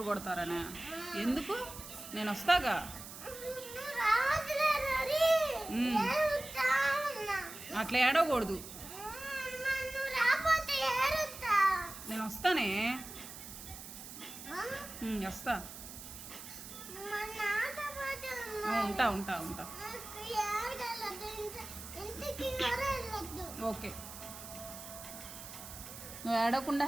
కొడతారనే? ఎందుకు? నేను వస్తాగా. అట్లా ఏడవకూడదు. నేను వస్తానే, వస్తా. ఉంటా ఉంటా ఉంటా. ఓకే, నువ్వు ఏడవకుండా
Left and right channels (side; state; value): right; noise; hiss, 12 dB below the sound